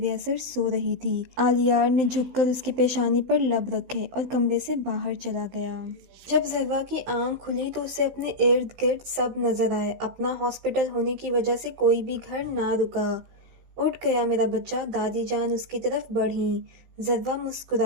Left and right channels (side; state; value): left; late; 15 ms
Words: اثر سو رہی تھی۔ عالیار نے جھک کر اس کی پیشانی پر لب رکھے اور کمرے سے باہر چلا گیا۔ جب ذروہ کی آنکھ کھلی تو اسے اپنے ارد گرد سب نظر آئے۔ اپنا ہاسپٹل ہونے کی وجہ سے کوئی بھی گھر نہ رکا۔ اٹھ گیا میرا بچہ، دادی جان اس کی طرف بڑھیں۔ ذروہ